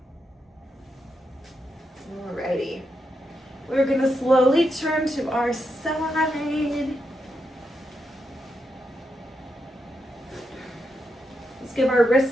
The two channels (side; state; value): both; normal; correlation 0.84